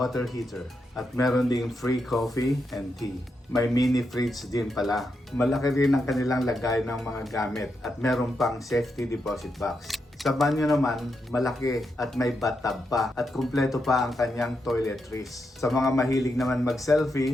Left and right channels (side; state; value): both; normal; correlation 0.84